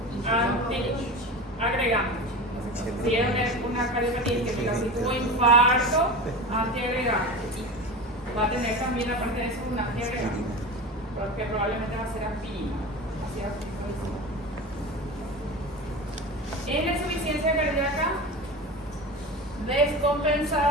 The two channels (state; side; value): normal; both; correlation 0.29